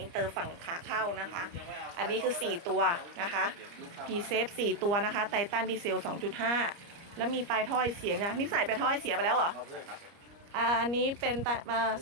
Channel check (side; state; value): left; late; 29 ms